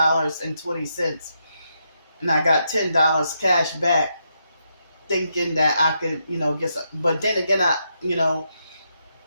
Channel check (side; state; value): both; inverted; correlation -0.81